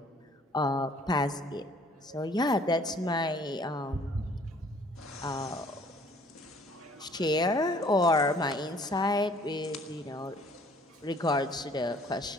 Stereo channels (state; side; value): normal; both; correlation 0.57